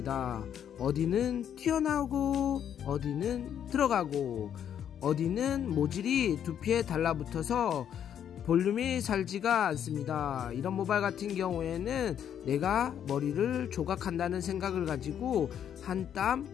어디는 튀어나오고 어디는 들어가고 어디는 모질이 두피에 달라붙어서 볼륨이 살지가 않습니다. 이런 모발 같은 경우에는 내가 머리를 조각한다는 생각을 가지고 한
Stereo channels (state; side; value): quieter; right; 9.3 dB